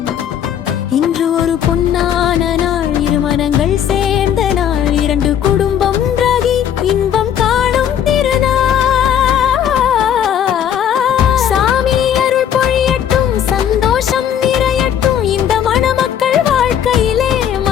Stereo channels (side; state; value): right; quieter; 9.4 dB